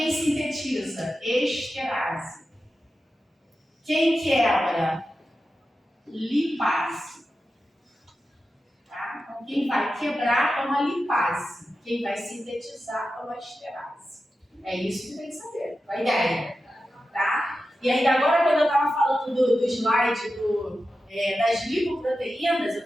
sintetiza? Esterase. Quem quebra? Lipase. Tá? Então, quem vai quebrar é uma lipase. Quem vai sintetizar é uma esterase. É isso que tem que saber, a ideia. Tá? E ainda agora, quando eu estava falando do slide das lipoproteínas, eu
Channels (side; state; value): both; normal; correlation 0.91